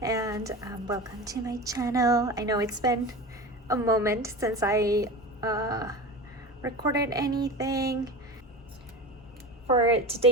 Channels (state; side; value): normal; both; correlation 0.29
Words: and welcome to my channel. I know it's been a moment since I recorded anything. For